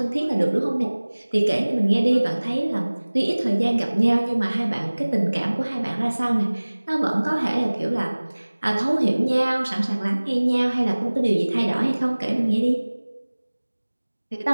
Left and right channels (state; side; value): inverted; both; correlation -1.00